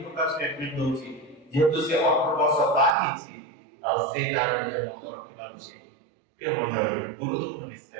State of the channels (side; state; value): left; drops out; at 3.0 s